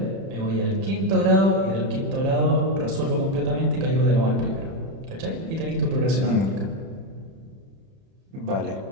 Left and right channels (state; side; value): late; left; 31 ms